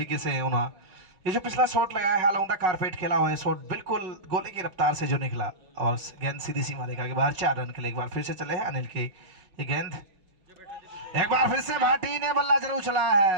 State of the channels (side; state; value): left; late; 5.3 ms